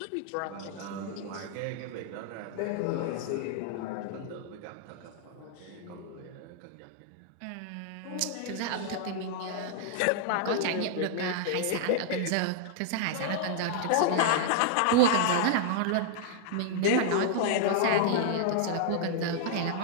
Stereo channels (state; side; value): different; both; correlation -0.01